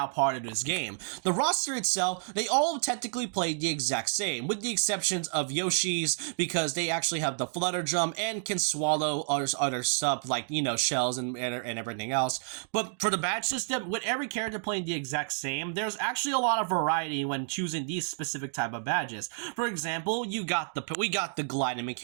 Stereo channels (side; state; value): left; silent; digital silence